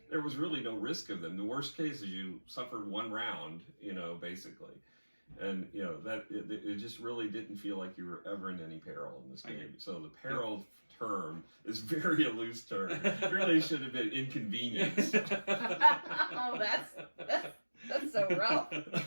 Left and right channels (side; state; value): both; inverted; correlation -1.00